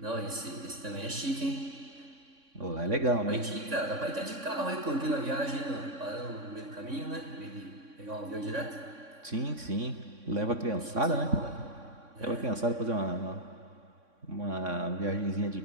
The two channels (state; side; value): late; left; 3.6 ms